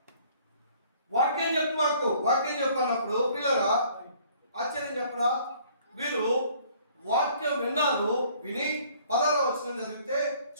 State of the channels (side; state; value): both; inverted; correlation -0.58